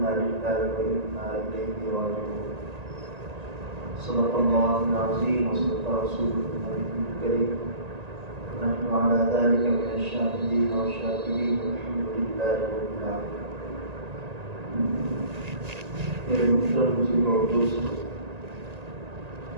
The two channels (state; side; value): late; left; 1.9 ms